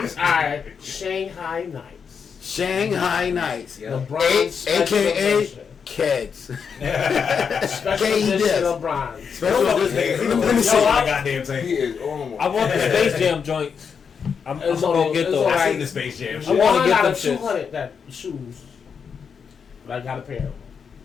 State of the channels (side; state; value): right; quieter; 6.4 dB